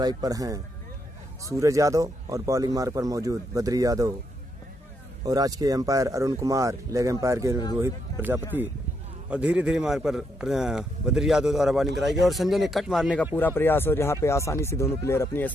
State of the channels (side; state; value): both; normal; correlation 0.78